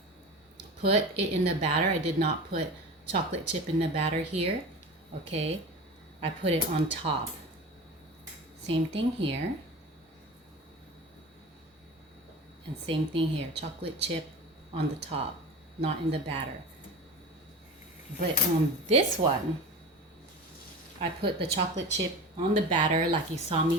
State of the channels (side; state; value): both; normal; correlation 0.32